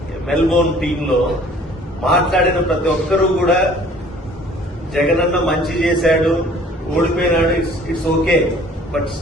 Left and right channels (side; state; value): both; normal; correlation 0.53